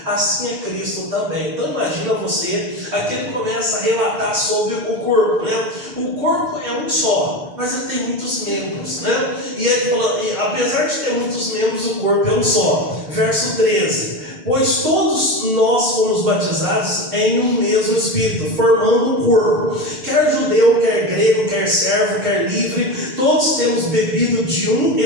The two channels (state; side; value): late; left; 6.7 ms